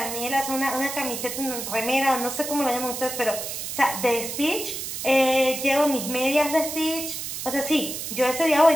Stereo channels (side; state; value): right; noise; hiss, 6 dB below the sound